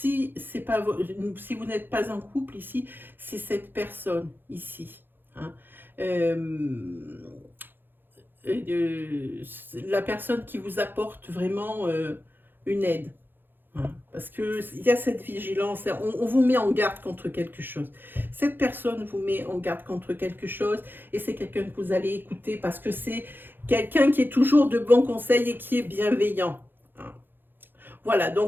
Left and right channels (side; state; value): left; late; 0.097 ms